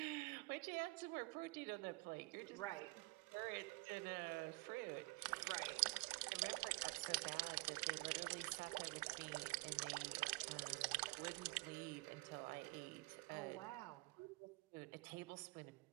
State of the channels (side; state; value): left; quieter; 26.7 dB